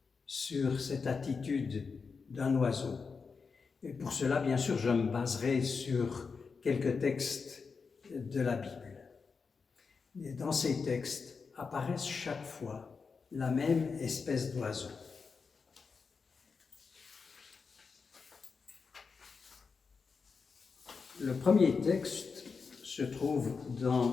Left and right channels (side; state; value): right; quieter; 5.1 dB